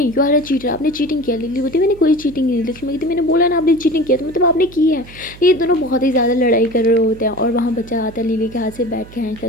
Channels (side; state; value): right; noise; hum, 19 dB below the sound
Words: यू आर अ चीटर, आपने चीटिंग किया। लिली बोलती मैंने कोई चीटिंग नहीं। लक्ष्मी कहती मैंने बोला ना आपने चीटिंग किया तो मतलब आपने की है। ये दोनों बहुत ही ज़्यादा लड़ाई कर रहे होते हैं और वहाँ बच्चा आता है लिली के हाथ से बैठ के खींचता